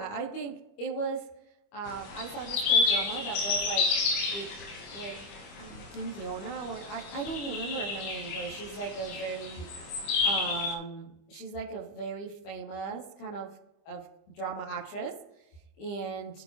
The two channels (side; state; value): right; late; 25 ms